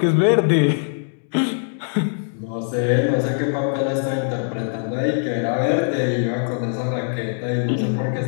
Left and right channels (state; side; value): silent; right; digital silence